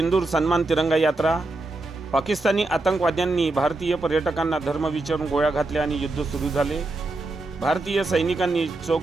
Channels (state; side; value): quieter; left; 3.0 dB